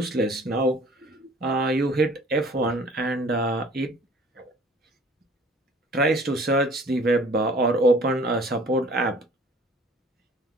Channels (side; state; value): both; normal; correlation 0.51